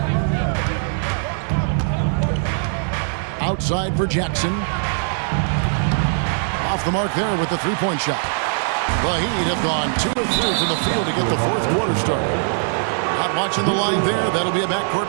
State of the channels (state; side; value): silent; left; digital silence